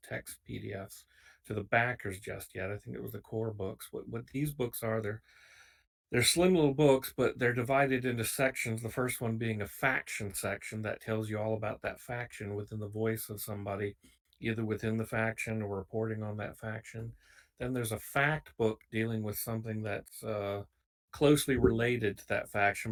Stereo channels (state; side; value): identical; both; correlation 1.00